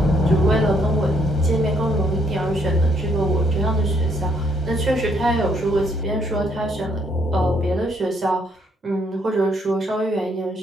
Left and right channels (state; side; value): normal; both; correlation 0.71